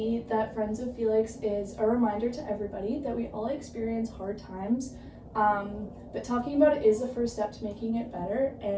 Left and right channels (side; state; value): both; identical; correlation 1.00